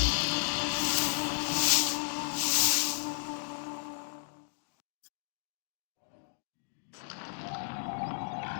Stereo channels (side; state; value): right; silent; digital silence